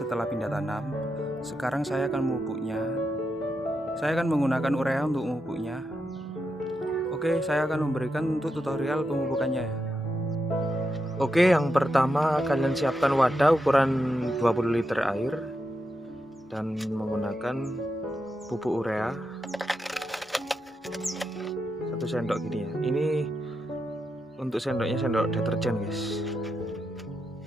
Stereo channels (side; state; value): both; normal; correlation 0.85